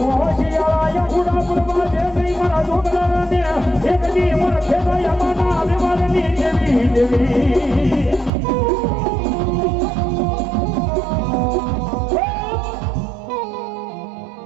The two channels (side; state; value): left; drops out; at 8.3 s